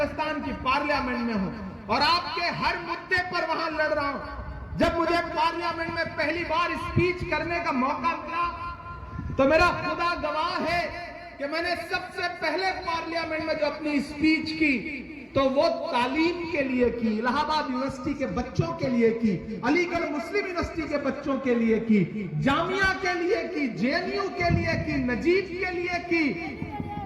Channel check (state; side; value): identical; both; correlation 1.00